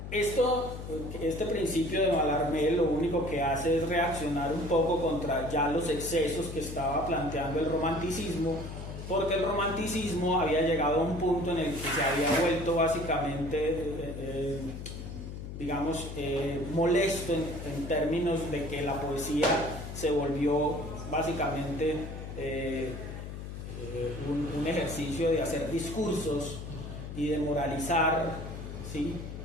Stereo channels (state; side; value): noise; left; hum, 9 dB below the sound